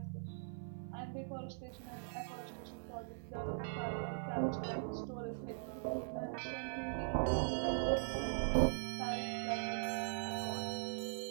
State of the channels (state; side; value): silent; left; 50 dB below the other